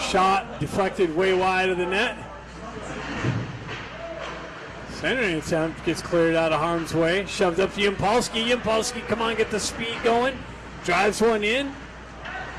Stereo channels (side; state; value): both; identical; correlation 1.00